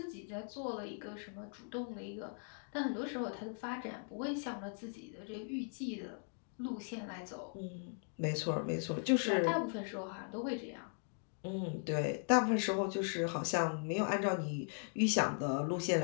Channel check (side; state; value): right; silent; 52 dB below the other